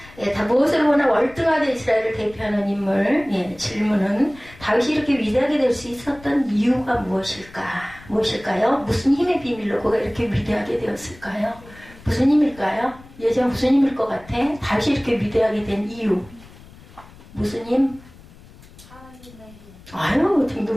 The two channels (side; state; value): left; noise; rumble, 22 dB below the sound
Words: 다 무엇을 보나 월등하게 이스라엘을 대표하는 인물. 질문은 다윗이 이렇게 위대하게 될 수 있었던 이유가 무엇일까요? 무슨 힘의 비밀로 그가 이렇게 위대하게 되었을까요? 무슨 힘일까요? 예전 무슨 힘일 것 같아? 다윗이 이렇게 위대하게 된 이유. 무슨 힘? 하나님의 힘.